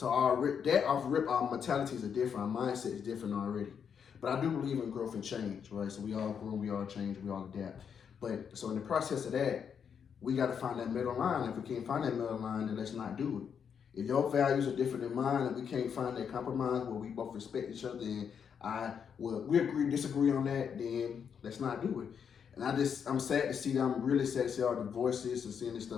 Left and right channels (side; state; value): right; quieter; 7.3 dB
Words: our mentalities are different, our mindset is different already. But I do believe in growth and change, right? So we all grow, we all change, we all adapt. But so in the process of that, we got to find that middle line. If we can't find that middle line, then let's not do it. If your values are different than mine and we can't find that compromise where we both respect each other and we disagree on that, then let's not do it. And I'm sad to see that. I'm really sad to see all the divorces and seeing this